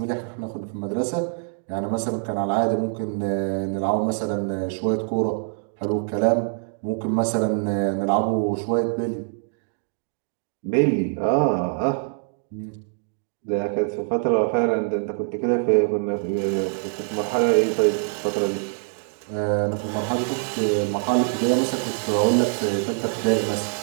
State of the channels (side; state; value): left; silent; 59 dB below the other